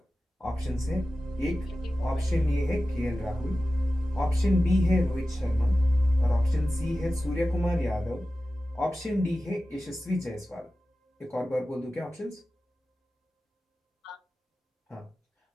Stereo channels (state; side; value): normal; both; correlation 0.94